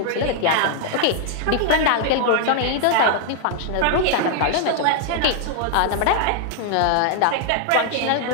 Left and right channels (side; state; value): both; different; correlation 0.00